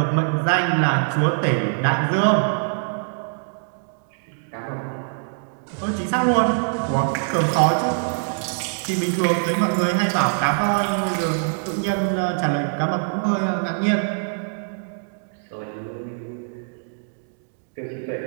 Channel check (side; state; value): left; silent; digital silence